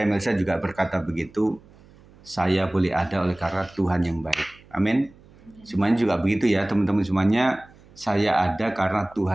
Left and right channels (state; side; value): noise; right; hum, 26 dB below the sound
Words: Melisa juga berkata begitu. Saya boleh ada oleh karena Tuhan yang baik. Amin. Semuanya juga begitu ya teman-teman semuanya. Saya ada karena